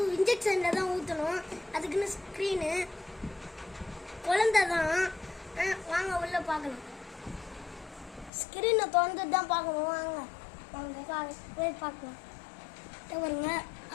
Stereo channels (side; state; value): right; drops out; at 8.3 s